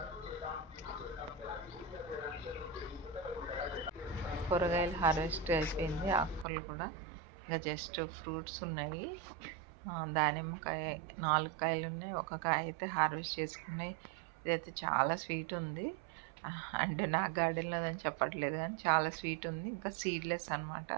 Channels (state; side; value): drops out; left; at 6.5 s